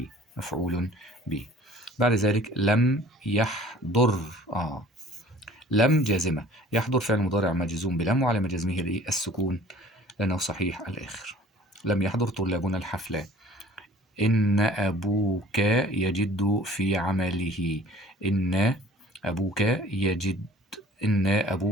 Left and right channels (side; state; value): both; normal; correlation 0.49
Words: بعد ذلك لم يحضر، لم جازمة، يحضر فعل مضارع مجزوم بلم، وعلامة جزمه السكون لأنه صحيح الآخر. لم يحضر طلابنا الحفلة. إن أبوك يجد في عمله. إن أبوك